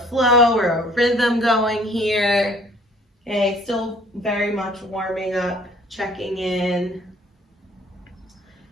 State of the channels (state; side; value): normal; both; correlation 0.56